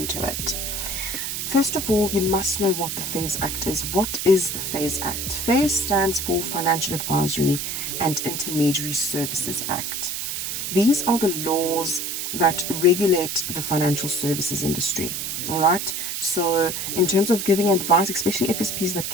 it. First of all, you must know what the FAIS Act is. What is the FAIS Act? FAIS stands for Financial Advisory and Intermediary Services Act. These are the laws that regulate the financial services industry. All right. So in terms of giving advice, especially FSPs that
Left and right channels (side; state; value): right; noise; hiss, 3 dB below the sound